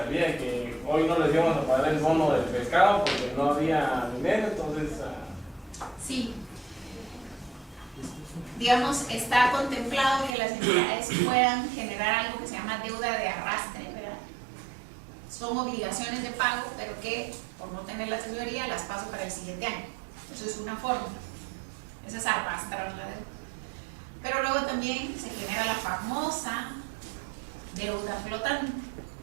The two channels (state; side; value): drops out; left; at 10.4 s